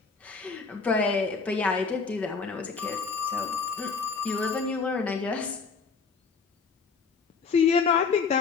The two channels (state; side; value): quieter; right; 5.1 dB